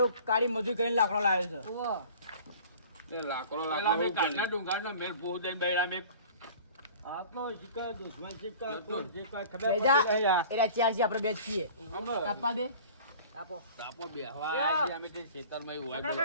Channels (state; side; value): inverted; both; correlation -0.44